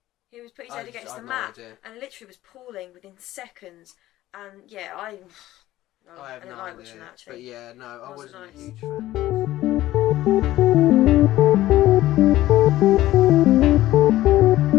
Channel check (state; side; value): quieter; right; 15.2 dB